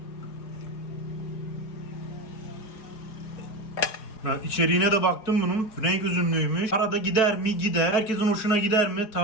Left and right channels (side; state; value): right; late; 4.8 ms